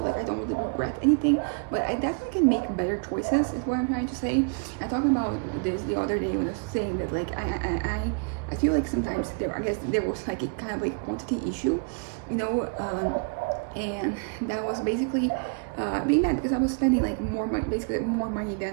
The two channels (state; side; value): quieter; left; 38.8 dB